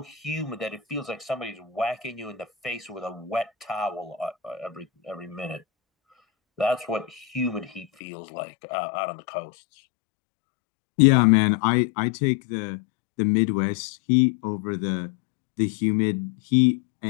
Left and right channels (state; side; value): drops out; right; at 7.9 s